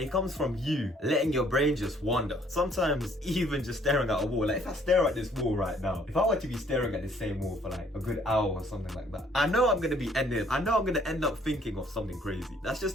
comes from you letting your brain just wander. Sometimes even just staring at a wall. Like if I stare at this wall right now, if I were to be staring at the same wall for like a good hour or something like that, I know I'm gonna end up thinking of something crazy. That's just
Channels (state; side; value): normal; both; correlation 0.62